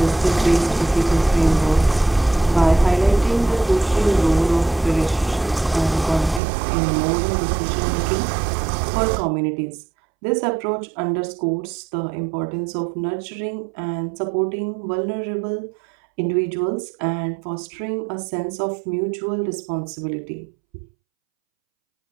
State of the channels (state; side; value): drops out; left; at 6.4 s